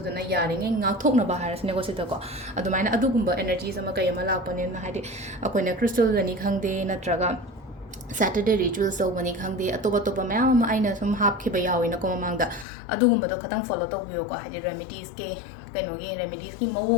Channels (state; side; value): drops out; right; at 12.7 s